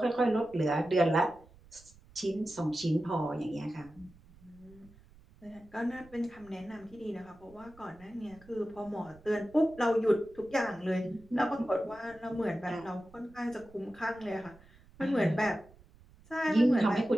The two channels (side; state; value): right; noise; rumble, 25 dB below the sound